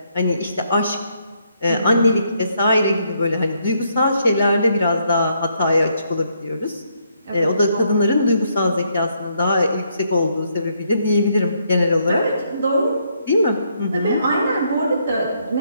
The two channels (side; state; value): both; inverted; correlation -0.74